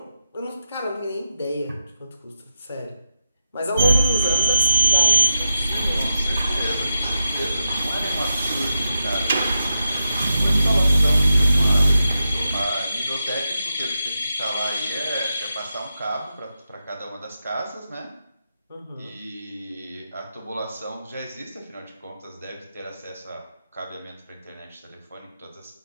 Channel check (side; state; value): both; inverted; correlation -0.85